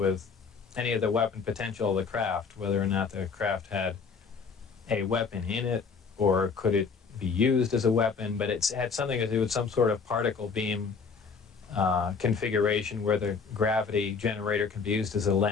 any of the weapon potential of the craft, whether or not the craft had a weapon in it or could it be used as a weapon, but it had something to do with some sort of particle beam configuration where the gravity generator can be used as a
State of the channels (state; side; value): quieter; right; 5.4 dB